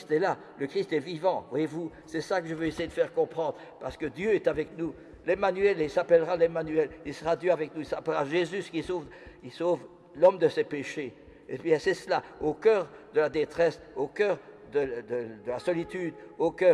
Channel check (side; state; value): both; identical; correlation 1.00